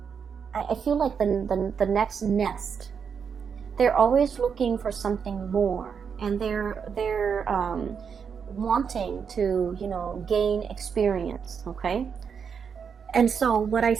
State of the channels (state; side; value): quieter; left; 6.6 dB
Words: I feel like the next nest. They're always looking for something more. And they're wanting to, you know, gain experience, okay? And so what I